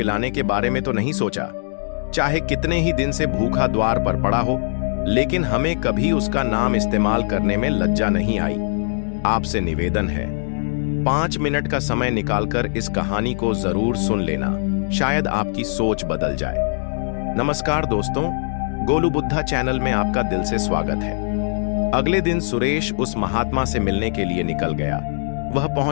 के बारे में तो नहीं सोचा। चाहे कितने ही दिन से भूखा द्वार पर पड़ा हो, लेकिन हमें कभी उसका नाम इस्तेमाल करने में लज्जा नहीं आई। आपसे निवेदन है, 5 मिनट का समय निकालकर इस कहानी को जरूर सुन लेना, शायद आपकी सोच बदल जाए। नमस्कार दोस्तों, गोलू बुद्धा चैनल में आपका दिल से स्वागत है। अगले दिन सुरेश उस महात्मा से मिलने के लिए निकल गया। वह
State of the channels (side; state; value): right; silent; digital silence